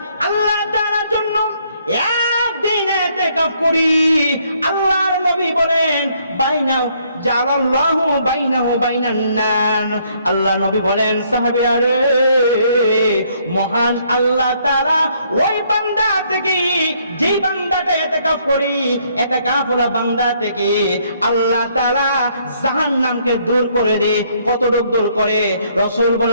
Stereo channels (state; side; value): inverted; both; correlation -0.68